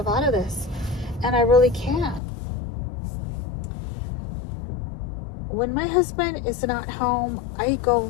out of this. And I really can't. When my husband is not home, I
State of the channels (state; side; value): drops out; right; at 2.2 s